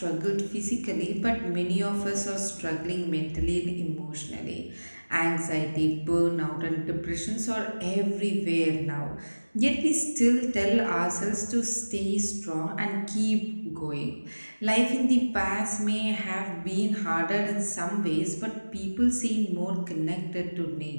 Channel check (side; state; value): both; inverted; correlation -1.00